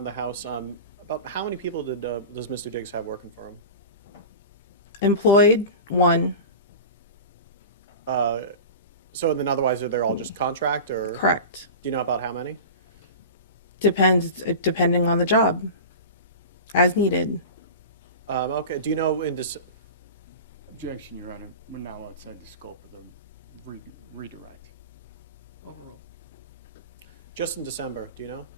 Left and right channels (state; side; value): inverted; both; correlation -0.31